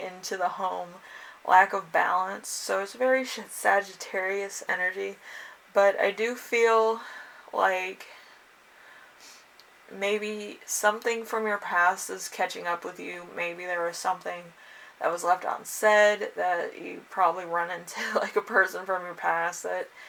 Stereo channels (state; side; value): identical; both; correlation 1.00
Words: into the home, lack of balance. So it's very Sagittarius energy, but I do feel like maybe something from your past is catching up with you. Maybe there was something that was left unsaid that you probably run into like a person from your past that